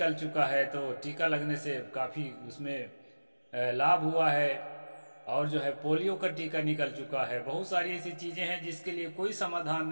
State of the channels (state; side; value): inverted; both; correlation -1.00